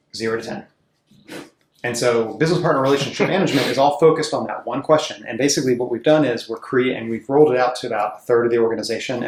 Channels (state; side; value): identical; both; correlation 1.00